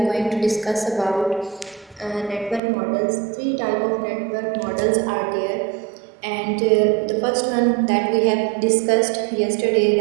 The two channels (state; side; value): drops out; left; at 2.6 s